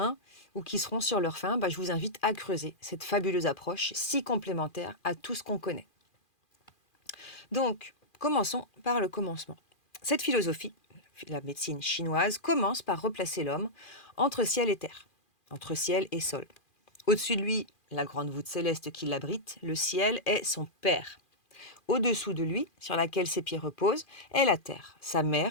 ou qui seront sur leur faim, je vous invite à creuser cette fabuleuse approche si complémentaire à tout ce qu'on connaît. Donc, commençons par le commencement. Cette philosophie, la médecine chinoise, commence par replacer l'homme entre ciel et terre, entre ciel et sol. Au-dessus de lui, la grande voûte céleste qui l'abrite, le ciel est son père. Au-dessous de lui, sur laquelle ses pieds reposent, est la terre, sa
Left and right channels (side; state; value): right; late; 2.4 ms